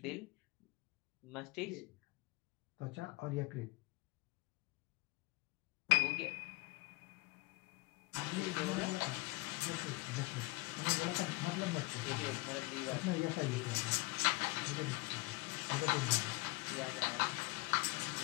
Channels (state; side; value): quieter; right; 24.6 dB